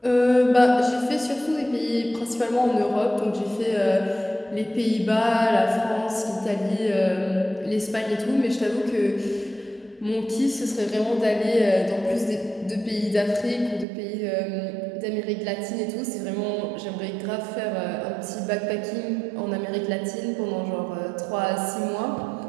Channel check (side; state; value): left; drops out; at 13.9 s